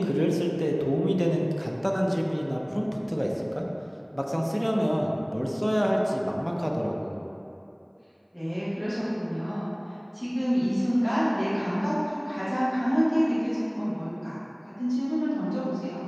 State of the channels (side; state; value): both; identical; correlation 1.00